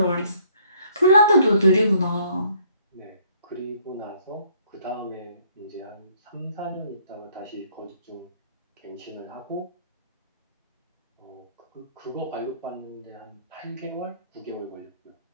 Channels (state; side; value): inverted; both; correlation -0.63